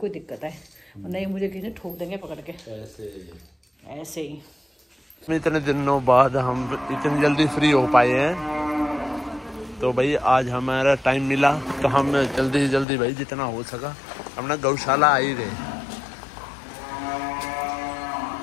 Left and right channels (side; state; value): right; drops out; at 12.9 s